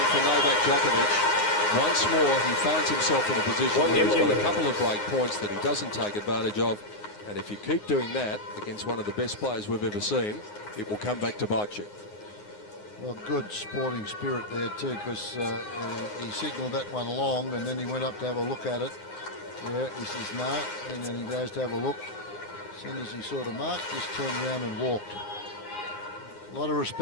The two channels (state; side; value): late; right; 9.6 ms